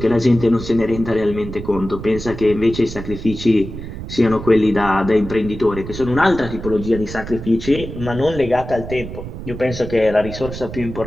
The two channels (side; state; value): right; noise; rumble, 10 dB below the sound